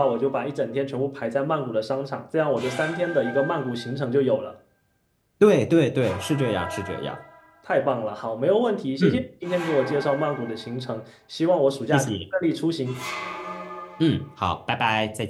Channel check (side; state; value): both; identical; correlation 1.00